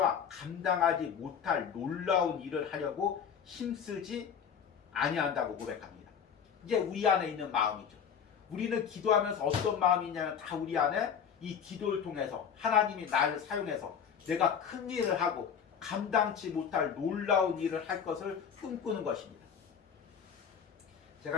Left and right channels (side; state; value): right; quieter; 7.5 dB